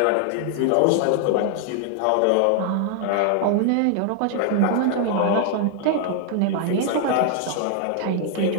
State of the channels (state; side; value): different; both; correlation 0.00